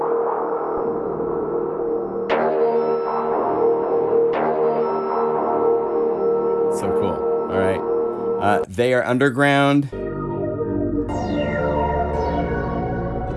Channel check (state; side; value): identical; both; correlation 1.00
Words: So cool. All right. They Are Underground.